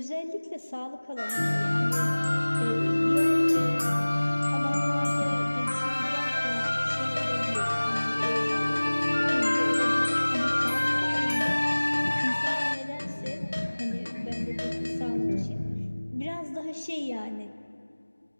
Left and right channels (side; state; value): both; inverted; correlation -1.00